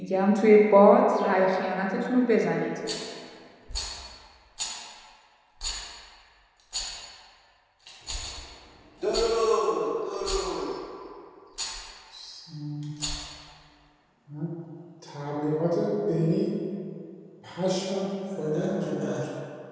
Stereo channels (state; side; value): identical; both; correlation 1.00